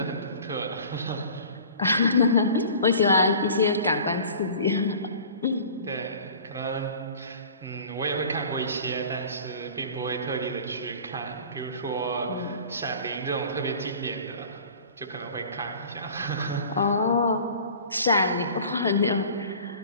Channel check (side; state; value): both; inverted; correlation -0.43